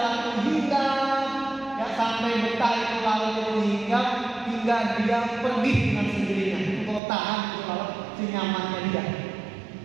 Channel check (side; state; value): left; drops out; at 7.0 s